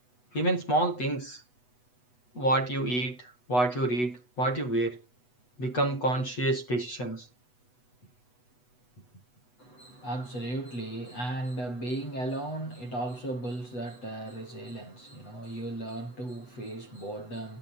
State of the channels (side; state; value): right; late; 8.1 ms